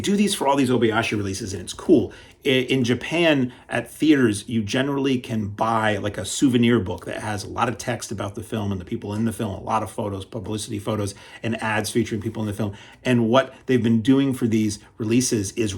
these for all these Obayashi releases, and it's cool. In Japan, at theaters, you generally can buy like a souvenir book that has a lot of text about the film and the people in the film, a lot of photos, publicity photos, and ads featuring people in the film. And what they've been doing for these releases is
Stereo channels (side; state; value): both; identical; correlation 1.00